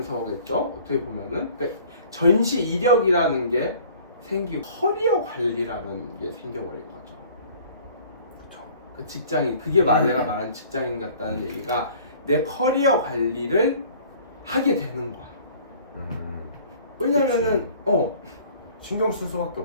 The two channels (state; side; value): inverted; both; correlation -0.51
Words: 어떻게 보면은 그러니까 전시 이력이라는 게 생기고 커리어 관리라는 게 생겨버린 거죠. 그렇죠. 그 직장인 그게 내가 말한 직장인 같다는 얘기가 내 커리어 관리를 하게 되는 거야. 왜냐면은 신경 쓸 수밖에